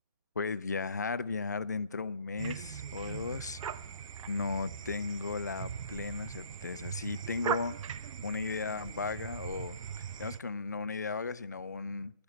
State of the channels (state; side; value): inverted; both; correlation -0.54